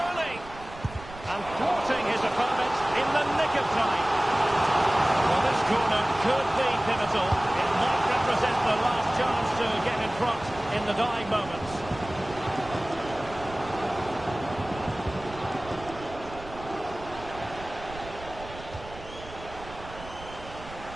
And thwarting his opponent in the nick of time. Well, this corner could be pivotal. It might represent the last chance to get in front in the dying moments.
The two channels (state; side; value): noise; right; rumble, 15 dB below the sound